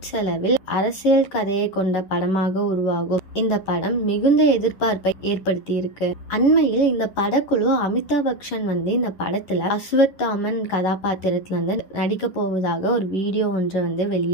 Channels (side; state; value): right; late; 11 ms